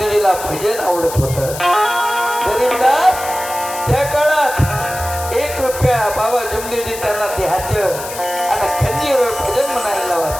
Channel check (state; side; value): noise; left; hiss, 10 dB below the sound